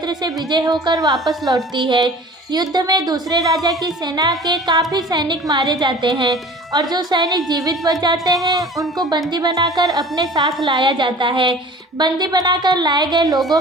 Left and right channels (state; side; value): normal; both; correlation 0.44